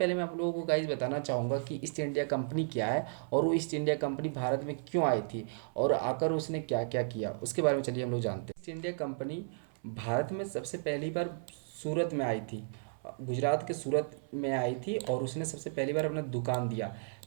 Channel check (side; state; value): left; silent; 55 dB below the other